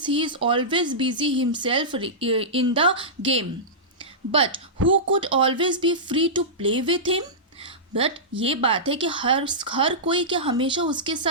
he is always busy himself in the game. But who could always be free to play with him. बट ये बात है कि हर कोई क्या हमेशा उसके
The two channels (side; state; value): both; normal; correlation -0.16